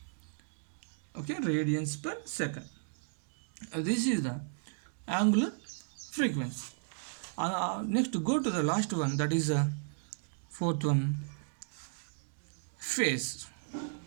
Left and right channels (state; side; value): silent; left; digital silence